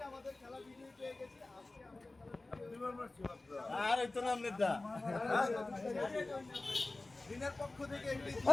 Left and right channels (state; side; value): quieter; right; 3.1 dB